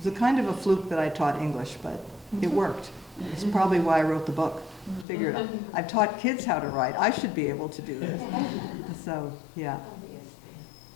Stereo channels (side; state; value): right; drops out; at 5.1 s